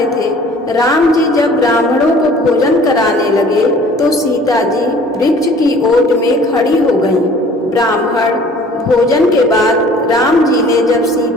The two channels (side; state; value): both; normal; correlation 0.51